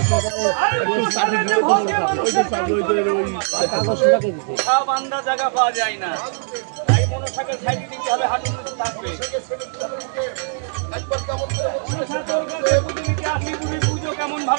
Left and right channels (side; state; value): left; silent; digital silence